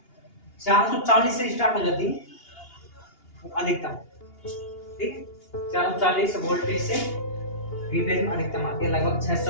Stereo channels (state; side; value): late; right; 2.8 ms